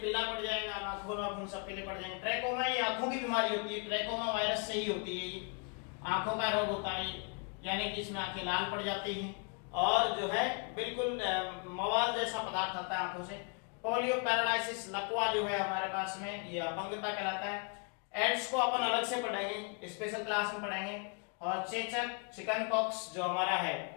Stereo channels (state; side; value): quieter; right; 37.3 dB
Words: पड़ जाएगा, आंखों में सब पीले पड़ जाएंगे। ट्रैकोमा ये आंखों की बीमारी होती है, ट्रैकोमा वायरस से ही होती है, ये आंखों का रोग होता है, यानी कि इसमें आंखें लाल पड़ जाती हैं और जो है बिल्कुल मवाद जैसा पदार्थ आता है आंखों से। पोलियो पैरालाइसिस, लकवा जो है हमारे पास में, ये अपंगता कहलाता है। एड्स को अपन अलग से पढ़ेंगे, स्पेशल क्लास में पढ़ेंगे। और चेचक, चिकन पॉक्स जो हमारा है,